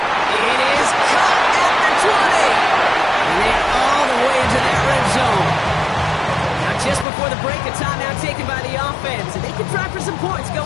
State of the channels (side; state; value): right; drops out; at 7.1 s